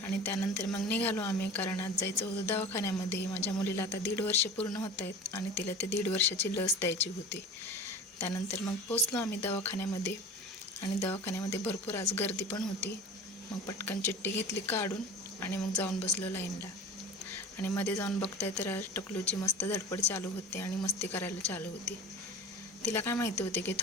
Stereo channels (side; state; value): both; normal; correlation 0.36